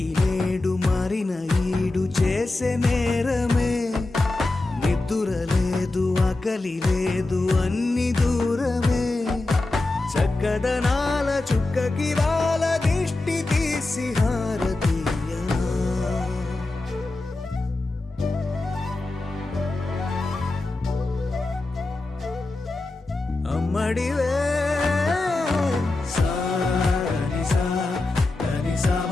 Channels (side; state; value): right; quieter; 3.0 dB